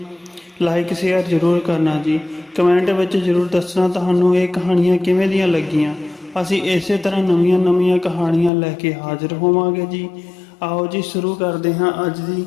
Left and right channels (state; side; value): drops out; right; at 8.5 s